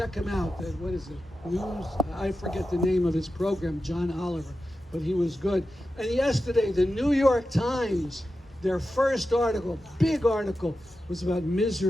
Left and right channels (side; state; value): both; normal; correlation 0.92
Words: him out. What is it? News? I forget the name of his program, John Oliver, but he was good. And yesterday, the New York Times, their first article, big article, was about